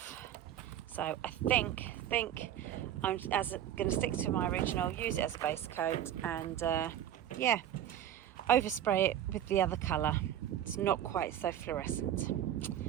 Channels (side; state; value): left; quieter; 11.0 dB